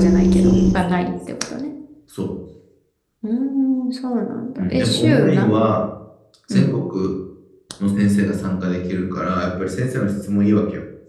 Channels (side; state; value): both; identical; correlation 1.00